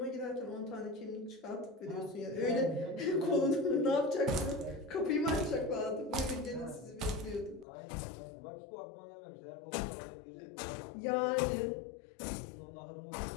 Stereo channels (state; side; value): drops out; right; at 7.7 s